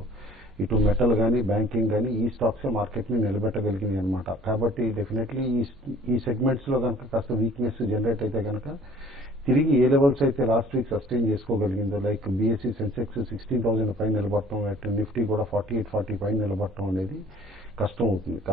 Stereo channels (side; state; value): both; normal; correlation 0.53